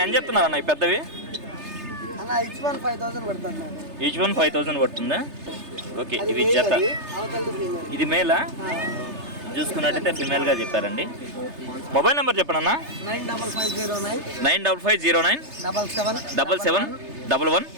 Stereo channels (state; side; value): late; left; 3.3 ms